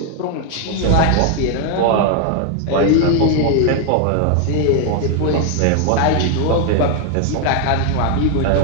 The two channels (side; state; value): both; different; correlation 0.00